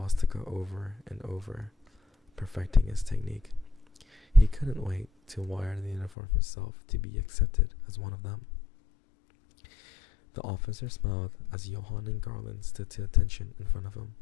over and over, perfecting his technique. He couldn't wait to wear the uniform himself to be accepted as one of them. The officer smiled as Johann and Garland stood to attention in front of him,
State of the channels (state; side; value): drops out; right; at 6.1 s